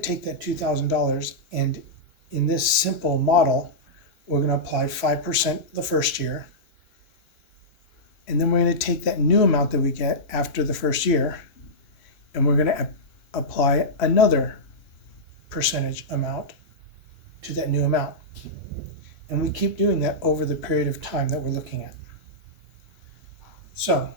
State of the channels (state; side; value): late; right; 3.0 ms